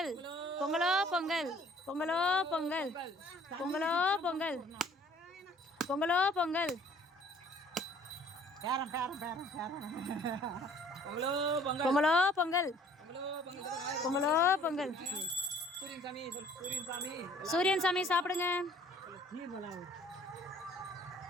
பொங்கலோ பொங்கல், பொங்கலோ பொங்கல், பொங்கலோ பொங்கல், பொங்கலோ பொங்கல், பொங்கலோ பொங்கல், பொங்கலோ பொங்கல். சூரியன் சாமி சாப்பிடுங்க.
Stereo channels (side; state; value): both; normal; correlation 0.56